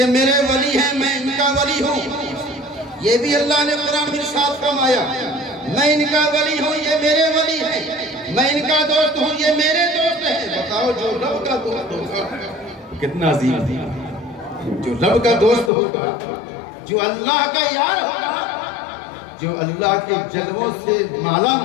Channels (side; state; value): right; drops out; at 15.7 s